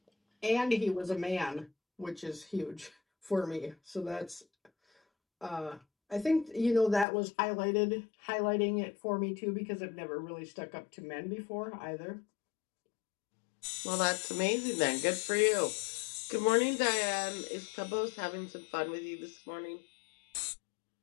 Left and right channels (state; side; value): drops out; right; at 7.1 s